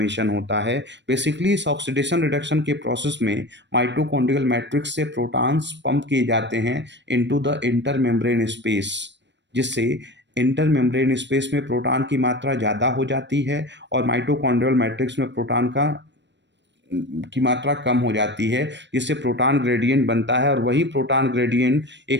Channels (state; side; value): late; left; 0.52 ms